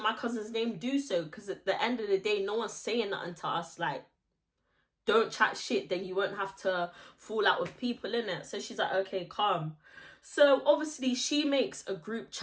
my cousin's name, do so. Because at the end of the day, no one's saying nothing to us. Like, don't chat shit, then you won't have to fall out with people, innit? So she's like, okay, calm. So obviously she makes a group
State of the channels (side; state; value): both; identical; correlation 1.00